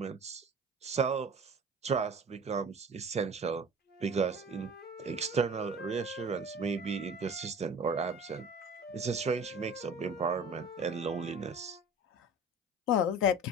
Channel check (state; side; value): normal; both; correlation 0.41